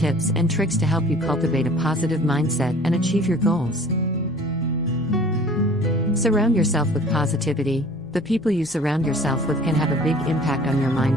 and tricks to help you cultivate a positive mindset and achieve your goals. Surround yourself with positivity. The people you surround yourself with can have a big impact on your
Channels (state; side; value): noise; left; hum, 27 dB below the sound